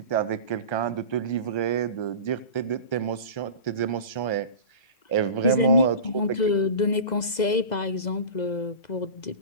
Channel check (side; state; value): right; late; 2.0 ms